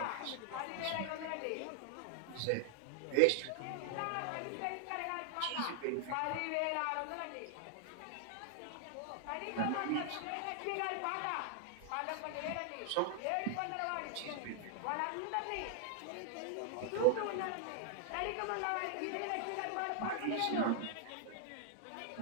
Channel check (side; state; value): both; different; correlation 0.00